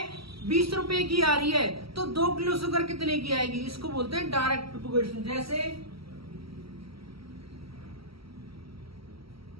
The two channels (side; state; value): left; late; 0.75 ms